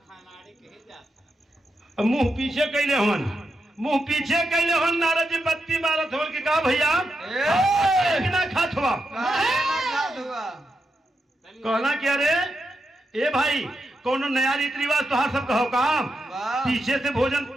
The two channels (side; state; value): both; normal; correlation 0.86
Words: मुंह पीछे कैले हवन मुंह पीछे कैले हवन नारद जी बत्ती मारत हो कि का भैया ना खात हुआ कहना कि अरे ए भाई कौन नया रीति रिवाज तो हर सब कहो काम पीछे से भोजन